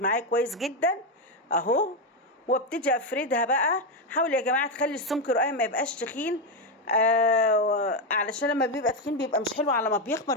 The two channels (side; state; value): both; normal; correlation 0.08